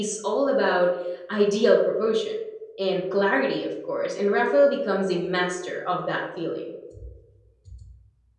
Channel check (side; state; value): both; identical; correlation 1.00